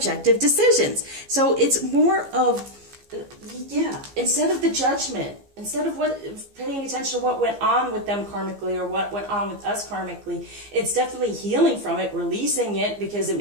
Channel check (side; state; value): left; late; 15 ms